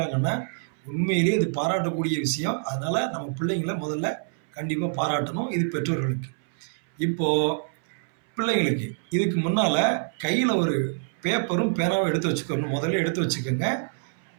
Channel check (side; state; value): left; silent; 61 dB below the other